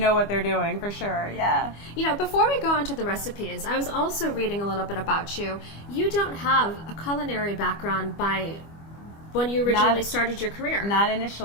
what they're doing, for sure, yeah. You know, before we go into the recipes, I was also reading a little bit about you. You don't have a culinary background by when you originally started your career. Not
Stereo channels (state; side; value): late; right; 25 ms